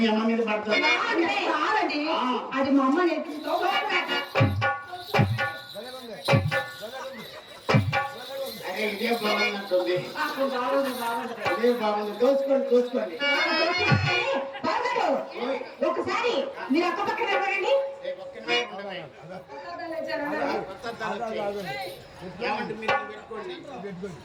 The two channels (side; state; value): both; identical; correlation 1.00